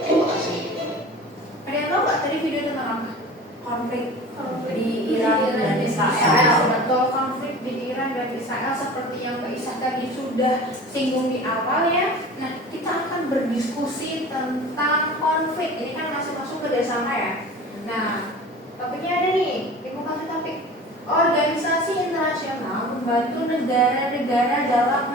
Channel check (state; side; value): normal; both; correlation 0.39